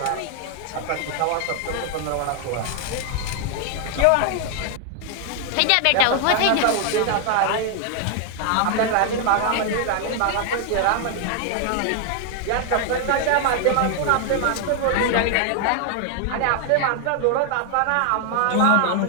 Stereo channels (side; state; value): both; different; correlation 0.00